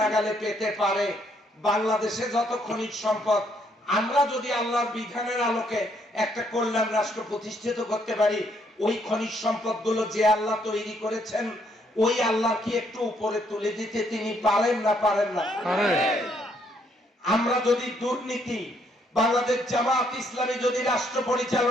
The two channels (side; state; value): both; normal; correlation 0.70